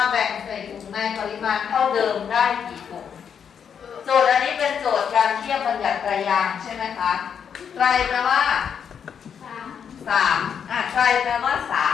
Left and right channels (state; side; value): quieter; right; 7.6 dB